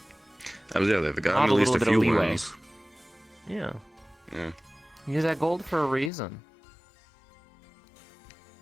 They've Not gotten a at least little a bit of few leeway. wins. Yeah. Yeah. He's at gold for a reason.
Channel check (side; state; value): right; drops out; at 6.1 s